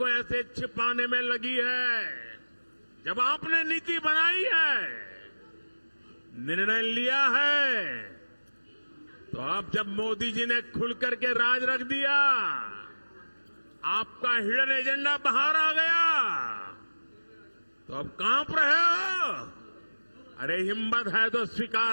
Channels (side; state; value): both; inverted; correlation -1.00